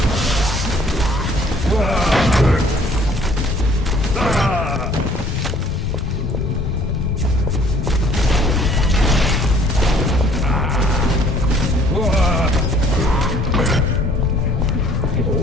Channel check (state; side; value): normal; both; correlation 0.57